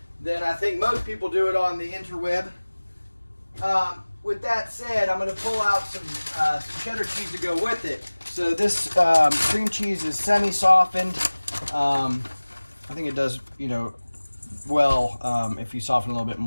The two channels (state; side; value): inverted; both; correlation -1.00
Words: than I think most people do it on the interweb. With that said, I'm going to pull out some cheddar cheese to go with it. So this cream cheese is semi-softened. I think it does, well if you soften a little bit